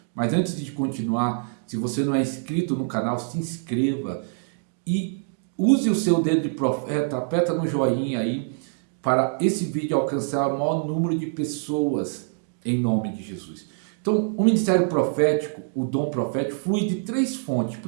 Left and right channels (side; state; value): left; silent; digital silence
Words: Mas antes de continuar, se você não é inscrito no canal, se inscreva e use o seu dedo de profeta, aperta no joinha aí para esse vídeo alcançar o maior número de pessoas em nome de Jesus. Então, o ministério profético, o dom profético, flui de três fontes.